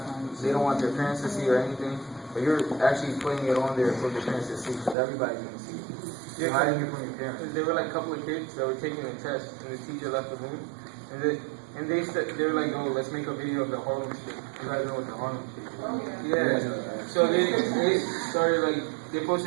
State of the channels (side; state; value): left; drops out; at 5.0 s